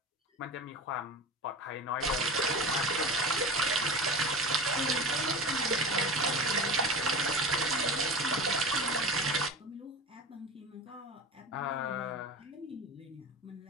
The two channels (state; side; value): normal; both; correlation 0.31